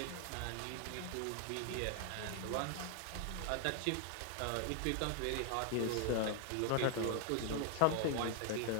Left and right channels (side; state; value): both; different; correlation 0.00